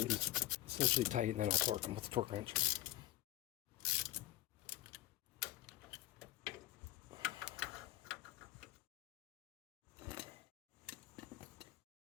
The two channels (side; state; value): right; quieter; 15.6 dB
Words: essentially tight, and then I'll torque them with the torque wrench.